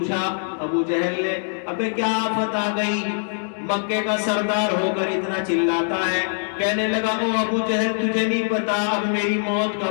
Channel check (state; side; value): silent; right; digital silence